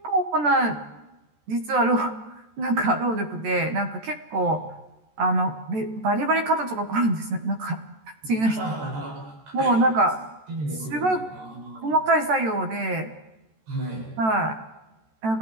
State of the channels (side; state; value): left; late; 14 ms